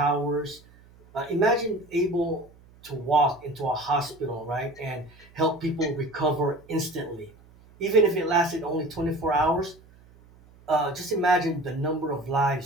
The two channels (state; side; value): noise; right; hum, 26 dB below the sound